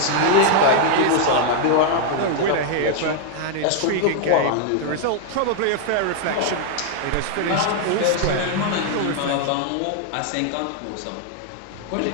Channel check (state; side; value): different; both; correlation 0.00